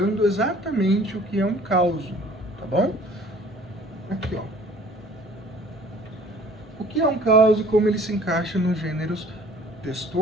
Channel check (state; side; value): normal; both; correlation 0.52